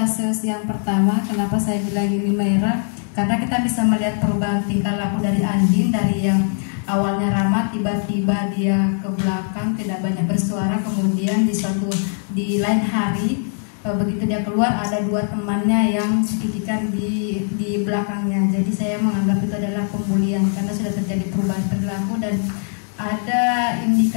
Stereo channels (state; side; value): silent; right; 58 dB below the other